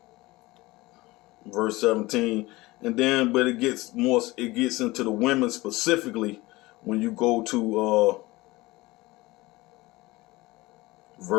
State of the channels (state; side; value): quieter; right; 20.5 dB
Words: Verse 17. And then, but it gets into the women specifically when you go to